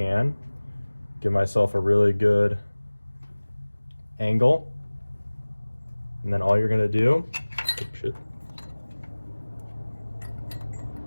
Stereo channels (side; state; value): both; inverted; correlation -1.00